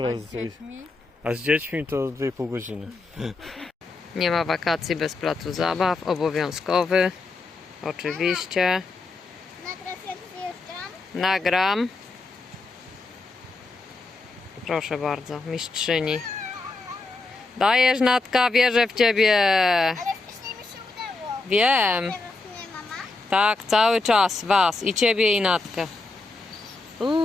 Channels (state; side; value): quieter; right; 3.5 dB